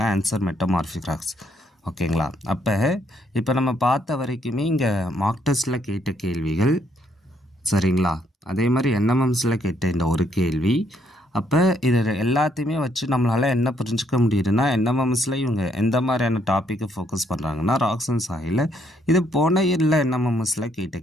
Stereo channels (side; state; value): both; normal; correlation 0.71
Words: Answer metamorphic rocks. ஓகேங்களா? அப்போ இப்போ நம்ம பார்த்த வரைக்குமே இங்கே மார்க் டெஸ்ட்டில் கேட்ட கேள்விகள். சரிங்களா? அதே மாதிரி NMMSல கேட்ட இந்த ஒரு கேள்வி. அப்போ இது எல்லாத்தையுமே வச்சு நம்மளால் என்ன புரிஞ்சுக்க முடியுதுன்னா, NMMSல இவங்க எந்த மாதிரியான டாப்பிக்கை ஃபோக்கஸ் பண்ணுறாங்கன்னா ராக்ஸ் அண்ட் சாயில். இது போன இயரில் NMMSல கேட்ட